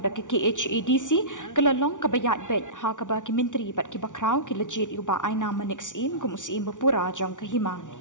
da ke KHADC kelalong kebayat bet ha keba ki menteri bat ki bakrau ki legit uba aina manik sim kum USI Bapura jang ke Himam.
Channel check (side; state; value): right; late; 0.87 ms